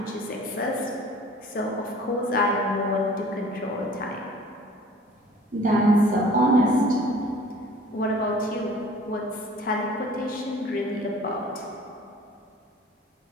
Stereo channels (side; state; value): both; normal; correlation 0.49